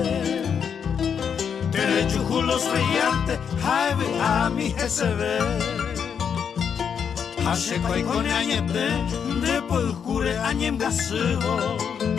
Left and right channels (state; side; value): quieter; right; 7.3 dB